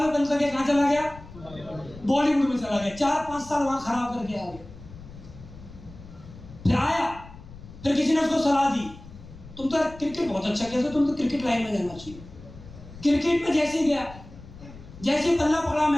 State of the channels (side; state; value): left; noise; rumble, 17 dB below the sound